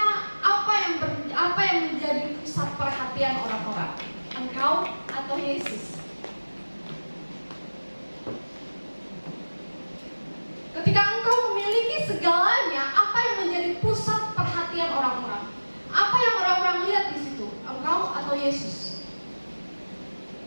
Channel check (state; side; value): inverted; both; correlation -1.00